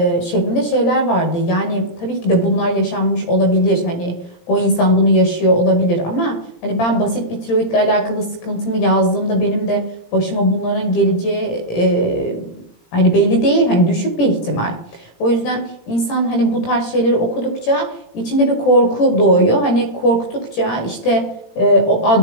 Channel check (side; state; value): right; late; 17 ms